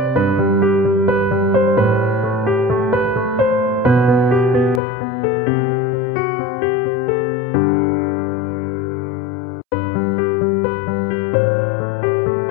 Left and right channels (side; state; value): right; drops out; at 4.8 s